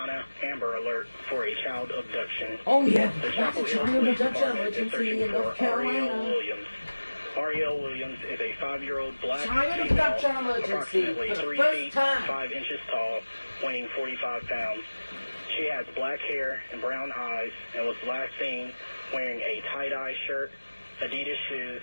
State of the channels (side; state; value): both; inverted; correlation -1.00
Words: Amber Alert for a child abduction. Oh yeah, The that's a Chapel Hill child Police abduction Department is emergency searching in North for Ariel Carolina. Williams. Ariel Williams is a 5-year-old black Child female, abduction emergency approximately for the 3 first feet time. 5 inches tall, weighing 45 pounds. She has black hair and brown eyes and was last seen wearing a tie-dye shirt, Adidas shoes,